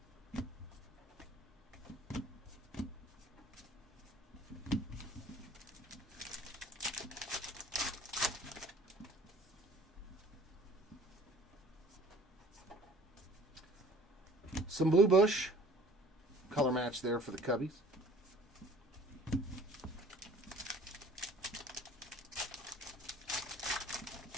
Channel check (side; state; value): both; normal; correlation 0.51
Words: Some Blue Bush. Color match there for the Cubbies.